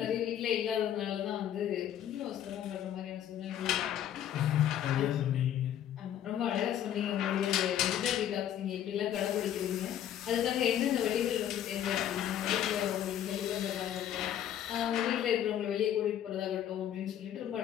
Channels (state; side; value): quieter; right; 10.6 dB